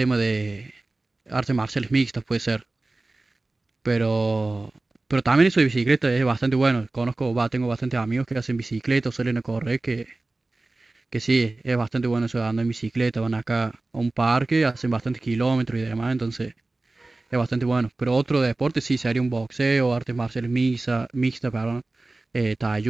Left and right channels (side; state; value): left; quieter; 3.1 dB